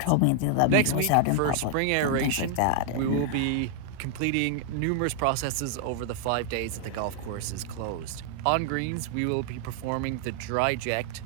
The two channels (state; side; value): different; both; correlation 0.00